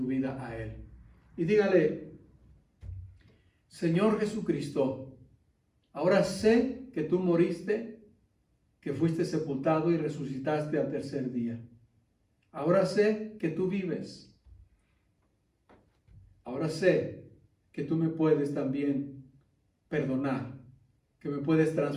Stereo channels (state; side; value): identical; both; correlation 1.00